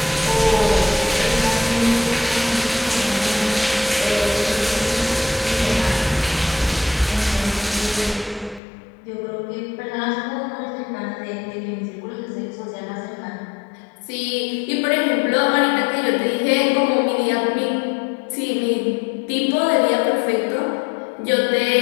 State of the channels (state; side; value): drops out; right; at 8.6 s